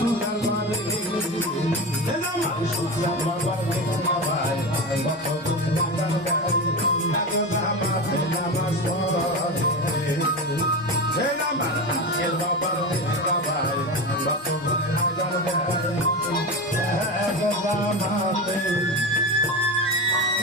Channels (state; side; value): normal; both; correlation 0.22